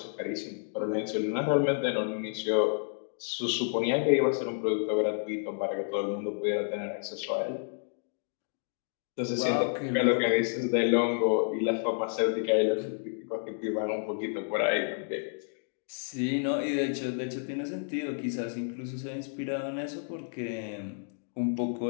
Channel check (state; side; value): silent; right; digital silence